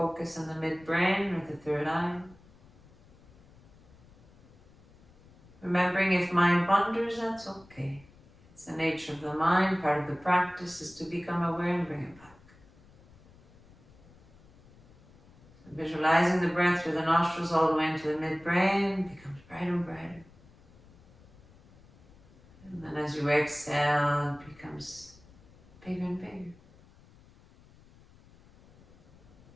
in the midbrain or the third eye. Remembering if mind wanders, that's okay. It's the nature of the mind. Part of the practice is to become aware and bring it back. So visualizing the breath through the nostrils all the way into the midbrain becomes brighter and brighter. And then as you exhale, it becomes bigger and bigger.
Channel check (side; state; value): left; noise; rumble, 26 dB below the sound